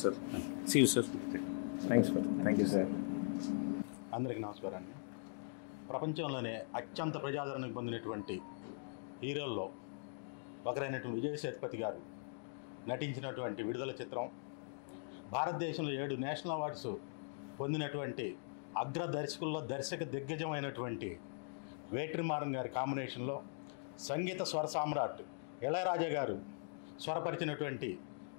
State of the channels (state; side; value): silent; right; digital silence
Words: sir. See you sir. Thanks sir. Thank you sir. అందరికీ నమస్కారాన్ని. ప్రపంచంలోనే అత్యంత ప్రజాదరణ పొందినటువంటి హీరోల్లో ఒకరైనటువంటి విజయ్ సేతుపతి గారు నటించినటువంటి విడుదల చిత్రం, భారతదేశంలో 7 నేషనల్ అవార్డ్స్ పొందినటువంటి అగ్ర దర్శకుల్లో దర్శక దిగ్గజమైనటువంటి వేట్రిమారన్ గారి కాంబినేషన్లో సంగీత స్వర సామ్రాట్ ఇళయరాజా గారు స్వరపరిచినటువంటి